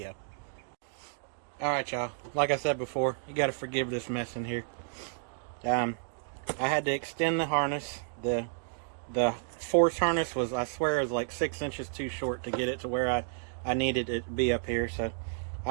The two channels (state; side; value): silent; left; digital silence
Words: Alright y'all, like I said before, you gotta forgive this mess in here. I had to extend the harness. The force harness was, I swear, is like 6 inches too short to get it to where I needed it to be up here. So